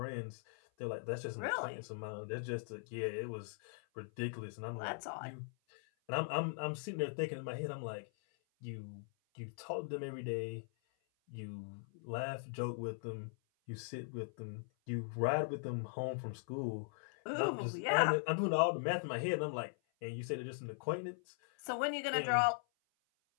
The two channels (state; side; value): silent; right; 51 dB below the other